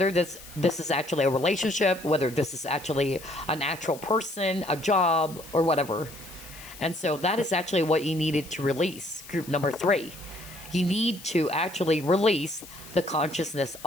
this is actually a relationship, whether this is actually an actual person, a job, or whatever. And so that is actually what you needed to release, group number 3. You need to actually release the consciousness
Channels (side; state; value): left; noise; hiss, 17 dB below the sound